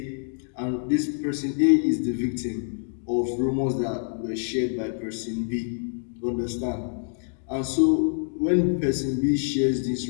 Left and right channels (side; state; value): right; silent; digital silence